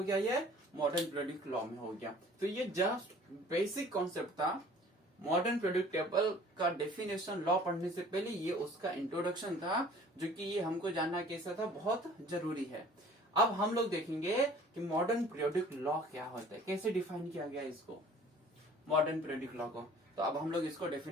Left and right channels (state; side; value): normal; both; correlation 0.50